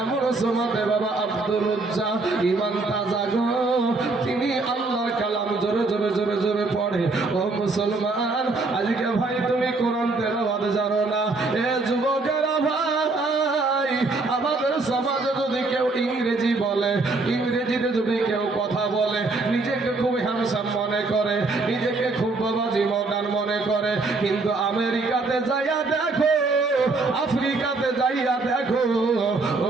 এমন সময় বাবা আব্দুল উজ্জা ইমান তাজা গো, তিনি আল্লাহর কালাম জোরে জোরে জোরে জোরে পড়ে। ও মুসলমান, আজকে ভাই তুমি কোরআন তেলাওয়াত জানো না, এ যুবকেরা ভাই, আমাদের সমাজে যদি কেউ ইংরেজি বলে, ইংরেজিতে যদি কেউ কথা বলে, নিজেকে খুব হ্যান্ডসাম মনে করে, নিজেকে খুব বাবাজি মডার্ন মনে করে, কিন্তু আমেরিকাতে যাইয়া দেখো, আফ্রিকাতে যাইয়া দেখো,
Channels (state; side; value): quieter; left; 3.5 dB